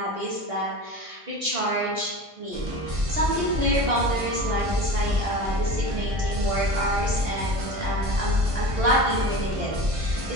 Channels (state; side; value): late; left; 1.5 ms